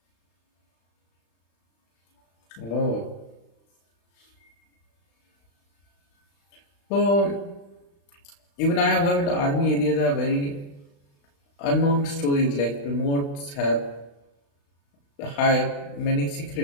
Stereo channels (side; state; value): right; late; 35 ms